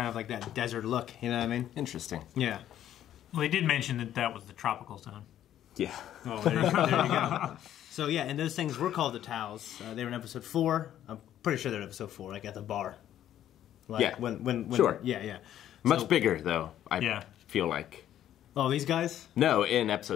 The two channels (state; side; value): quieter; right; 11.4 dB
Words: of like that desert look. You know what I mean? Interesting. Yeah. Well, they did mention that was the tropical zone. Yeah. Oh, there you go. There you go. So yeah, and those things were called the Tals. They were in episode 4. I'm pretty sure they're in episode 4, like at the bar. Like yeah. When sure. Yeah. Much bigger though. I feel like. Oh, these guys? No, in